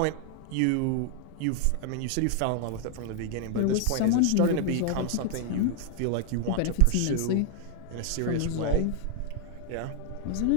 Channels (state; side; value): different; both; correlation 0.00